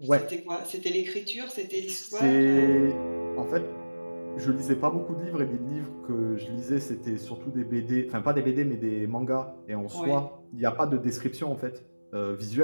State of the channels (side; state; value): both; inverted; correlation -1.00